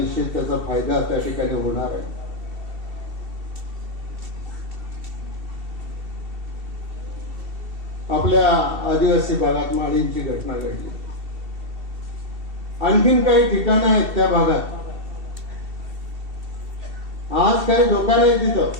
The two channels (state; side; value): late; left; 2.7 ms